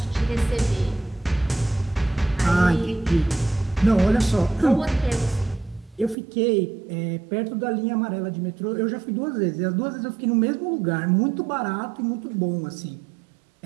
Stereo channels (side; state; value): left; drops out; at 6.2 s